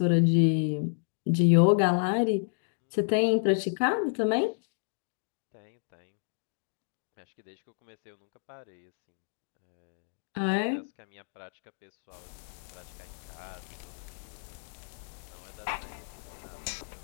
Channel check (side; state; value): right; silent; digital silence